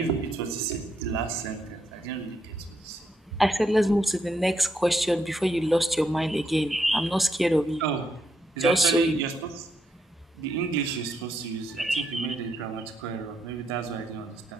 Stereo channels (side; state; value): both; normal; correlation 0.79